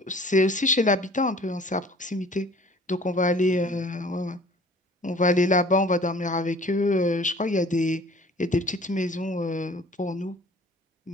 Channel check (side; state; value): both; normal; correlation 0.49